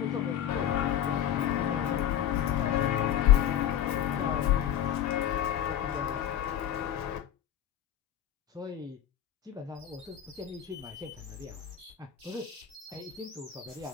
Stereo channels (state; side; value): quieter; right; 10.4 dB